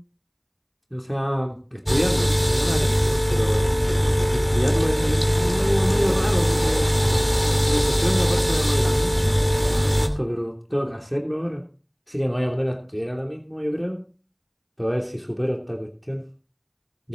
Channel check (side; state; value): both; identical; correlation 1.00